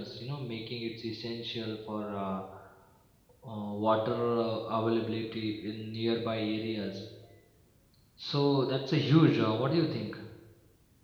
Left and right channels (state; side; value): identical; both; correlation 1.00